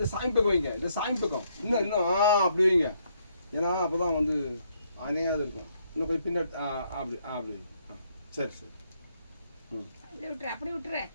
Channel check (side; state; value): both; inverted; correlation -0.72